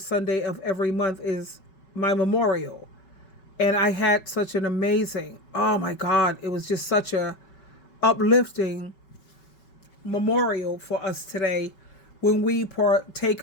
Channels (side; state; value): right; late; 5.3 ms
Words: Sunday of every month is my memorial. And I had such an amazing, oh my God, it was just such a uplifting memorial for us today when we partake